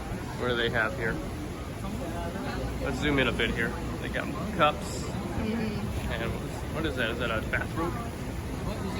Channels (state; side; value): identical; both; correlation 1.00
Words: do they have here? Let's zoom in a bit here. They got cups. And what is that? Is that a bathrobe?